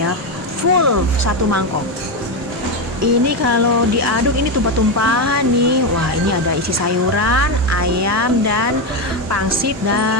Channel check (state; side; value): normal; both; correlation 0.11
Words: full satu mangkok. Ini kalau diaduk ini tumpah-tumpahan nih. Wah, ini ada isi sayuran, ayam, dan pangsit